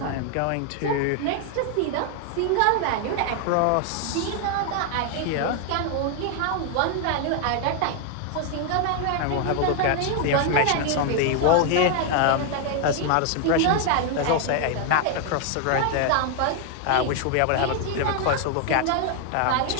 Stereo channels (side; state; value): both; different; correlation 0.00